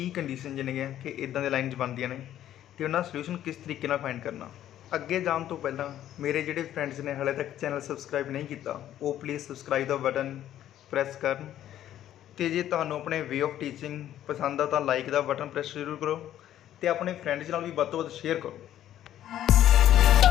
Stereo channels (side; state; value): right; quieter; 11.9 dB